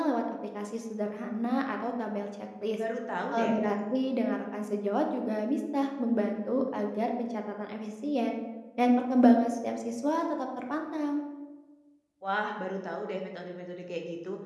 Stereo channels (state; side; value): identical; both; correlation 1.00